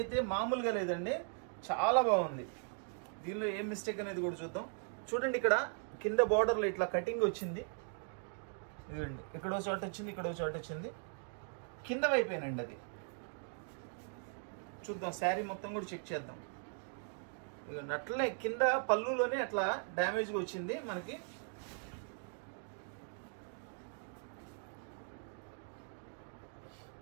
మామూలుగా లేదండి, చాలా బాగుంది. దీనిలో ఏం మిస్టేక్ అనేది కూడా చూద్దాం. చూడండి ఇక్కడ కింద బార్డర్లో ఇట్లా కటింగ్ వచ్చింది. ఇదండి ఇక్కడో చోట వచ్చింది, ఇక్కడో చోట వచ్చింది, కింద వైపేనండి అది. చూద్దాం శారీ మొత్తం కూడా చెక్ చేద్దాం. ఇదండి అట్లనే కింద పళ్ళులోనే అట్లా డ్యామేజ్గా వచ్చింది మనకి.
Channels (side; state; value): left; silent; 52 dB below the other